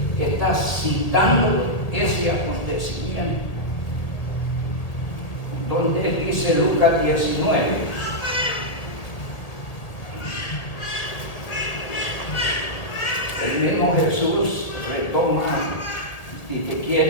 está citando ese acontecimiento, donde dice Lucas 19. El mismo Jesús retoma, si te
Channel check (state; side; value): late; right; 1.9 ms